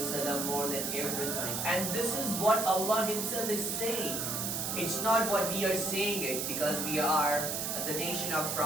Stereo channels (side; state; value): right; noise; hiss, 1 dB below the sound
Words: wasallam more than everything. And this is what Allah Himself is saying. It's not what we are saying it because we are the nation of